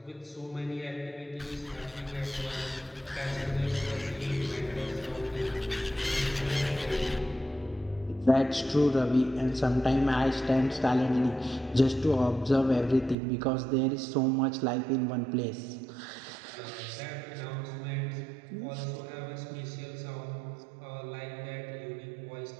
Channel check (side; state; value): left; drops out; at 13.2 s